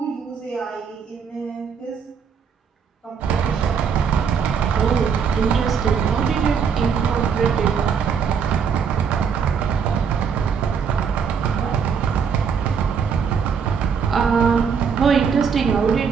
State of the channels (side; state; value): left; quieter; 6.6 dB